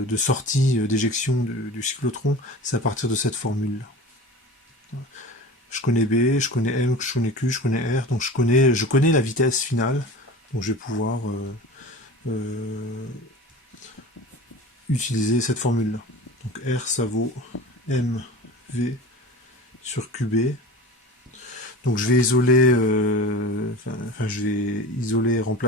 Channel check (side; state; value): both; normal; correlation 0.35